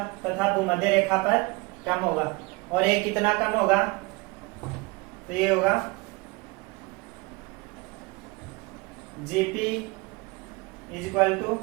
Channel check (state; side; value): quieter; left; 25.3 dB